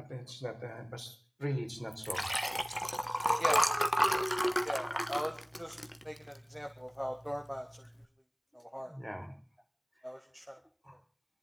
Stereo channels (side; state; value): both; identical; correlation 1.00